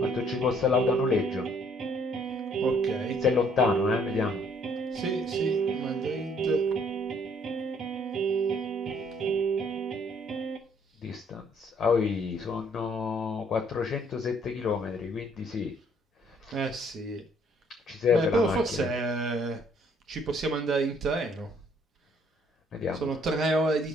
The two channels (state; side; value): normal; both; correlation 0.63